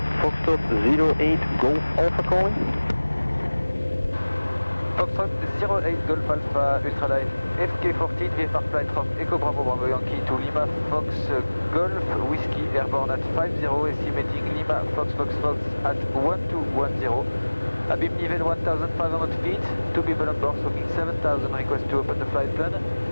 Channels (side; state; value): both; inverted; correlation -1.00